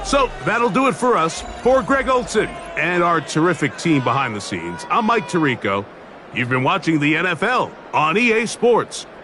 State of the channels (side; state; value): both; identical; correlation 1.00